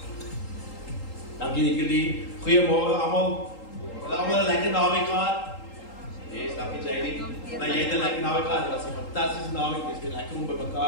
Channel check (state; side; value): late; right; 3.8 ms